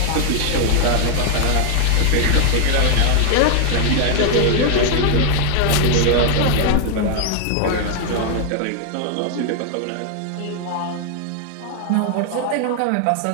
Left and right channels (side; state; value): both; different; correlation 0.00